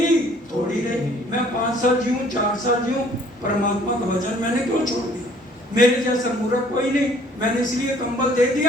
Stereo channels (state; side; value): normal; both; correlation 0.58